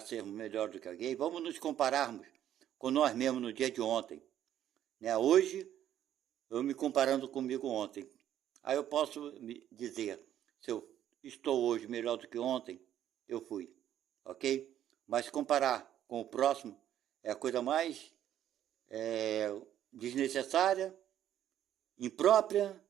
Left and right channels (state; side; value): quieter; left; 11.2 dB